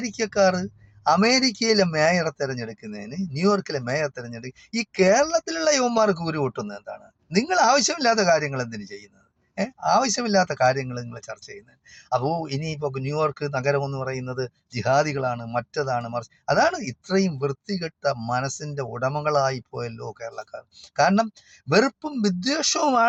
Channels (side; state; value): both; identical; correlation 1.00